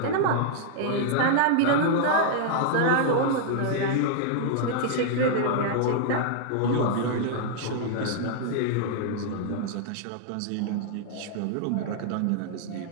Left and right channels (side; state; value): both; different; correlation -0.01